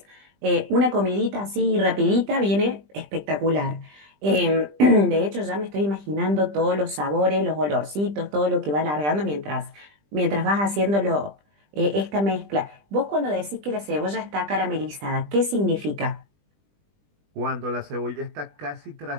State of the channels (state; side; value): late; left; 20 ms